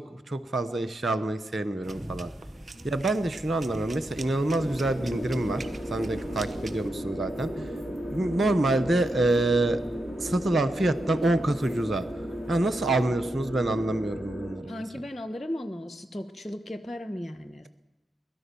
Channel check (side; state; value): both; normal; correlation 0.86